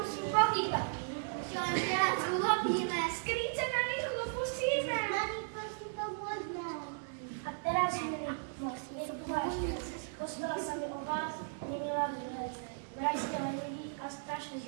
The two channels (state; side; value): silent; left; digital silence